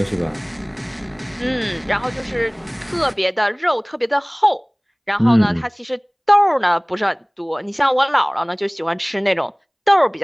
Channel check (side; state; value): both; identical; correlation 1.00